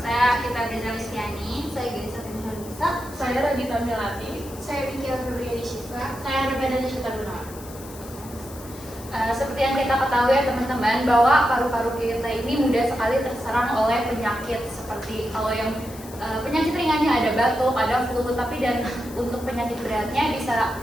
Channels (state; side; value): noise; left; hiss, 17 dB below the sound